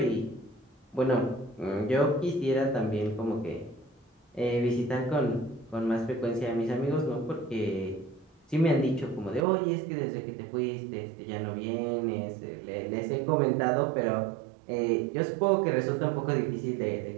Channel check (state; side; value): drops out; left; at 9.5 s